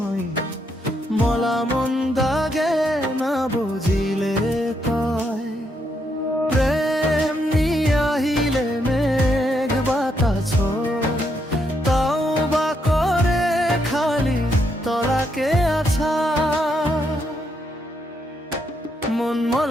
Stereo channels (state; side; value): normal; both; correlation 0.77